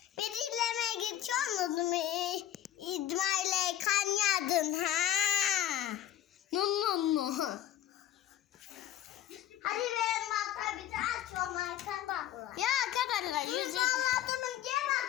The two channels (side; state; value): right; quieter; 12.0 dB